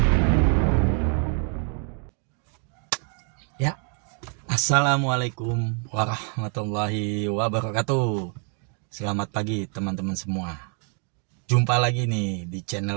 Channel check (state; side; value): quieter; left; 38.7 dB